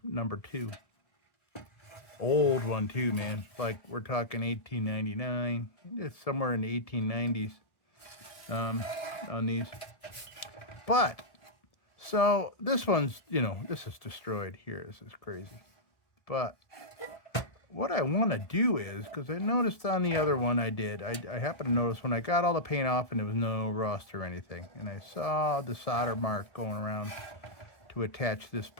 number 2. Old one too, man. Like, we're talking 1899. It's somewhere in the 1890s on these. But, so, this one's, this is destroyed here. This is crazy. But what I want to do is, because I noticed on the other one I did, I happened to notice when I got all the paint off and there was no rust or anything, and I saw the solder mark going around to attach this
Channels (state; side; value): late; right; 1.7 ms